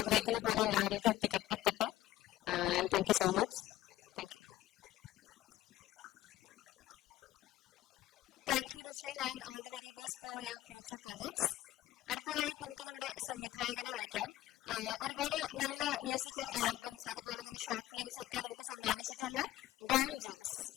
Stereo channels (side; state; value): right; quieter; 15.1 dB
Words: പോലെ എല്ലാവരിലേക്കും എത്തട്ടെ. And thank you so much. Thank you. Thank you Rushel and all the very best for your future projects. അടുത്തതായി നമുക്ക് നമ്മുടെ സംവിധായകനെ വിളിക്കാം. ഒരുപാട് നല്ല മ്യൂസിക്കൽ ആൽബംസ് അതുപോലെ തന്നെ ഷോർട്ട് ഫിലിംസ് ഒക്കെ നമുക്ക് സമ്മാനിച്ചിട്ടുള്ള ഡോൺ ജോസ്.